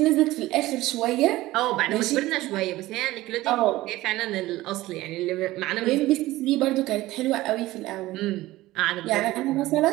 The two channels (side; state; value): left; quieter; 17.4 dB